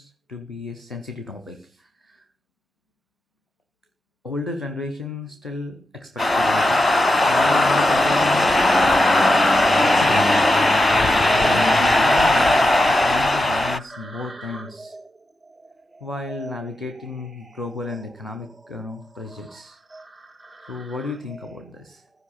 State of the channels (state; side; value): normal; both; correlation 0.88